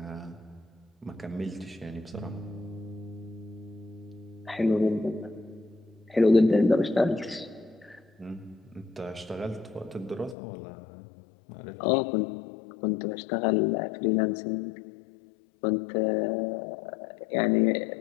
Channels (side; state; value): right; drops out; at 10.4 s